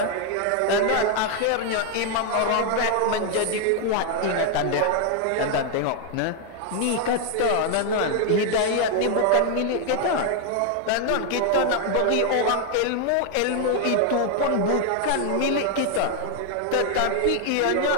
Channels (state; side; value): different; both; correlation 0.00